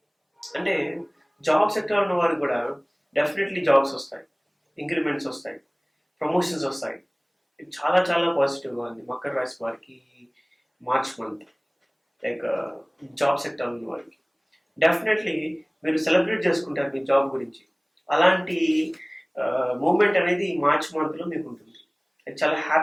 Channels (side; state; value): both; identical; correlation 1.00